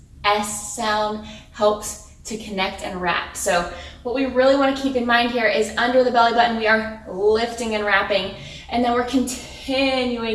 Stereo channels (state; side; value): identical; both; correlation 1.00